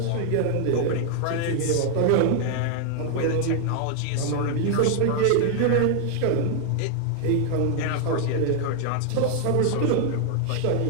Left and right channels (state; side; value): different; both; correlation 0.00